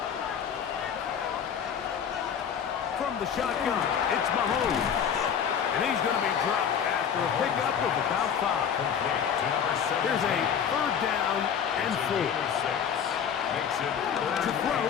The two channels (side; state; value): right; quieter; 7.9 dB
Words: From the shotgun, it's Mahomes. And he's going to be dropped after a pickup of about 5. Here's a 3rd down and 4. To throw